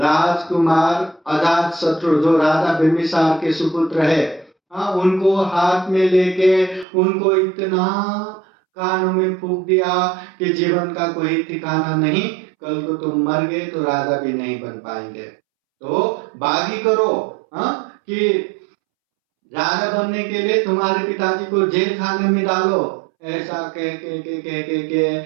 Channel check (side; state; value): left; drops out; at 6.9 s